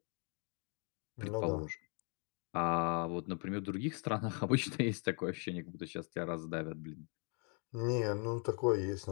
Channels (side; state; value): right; quieter; 37.7 dB